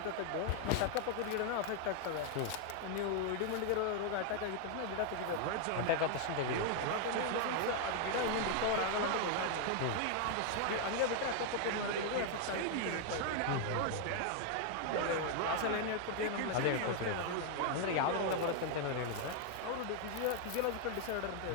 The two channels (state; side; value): different; both; correlation 0.00